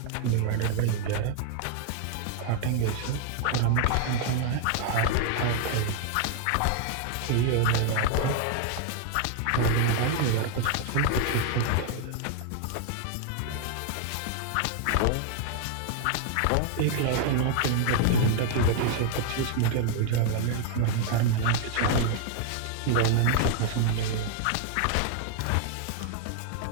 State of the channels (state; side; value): different; both; correlation 0.00